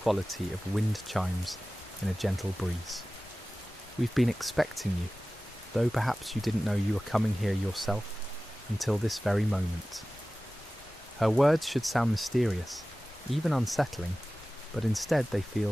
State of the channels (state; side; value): normal; both; correlation 0.97